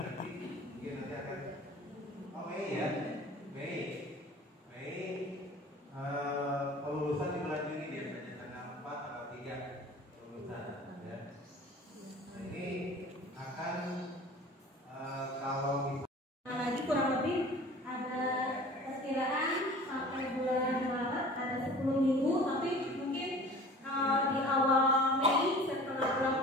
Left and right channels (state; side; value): normal; both; correlation 0.44